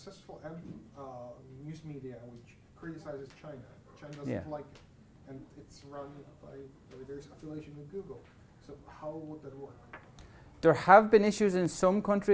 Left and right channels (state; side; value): identical; both; correlation 1.00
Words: news media which criticizes China? China doesn't like it, and it's run by there's affiliation with Google. So how would that work? There have been issues in some